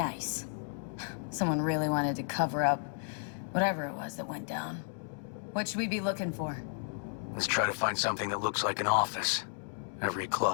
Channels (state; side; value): silent; right; digital silence